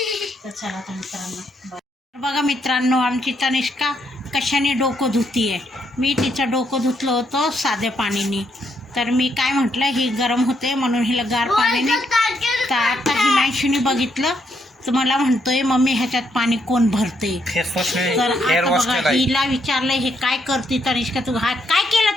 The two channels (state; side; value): normal; both; correlation 0.75